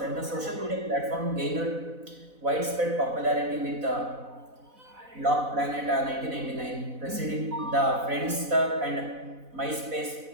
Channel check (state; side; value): late; left; 4.0 ms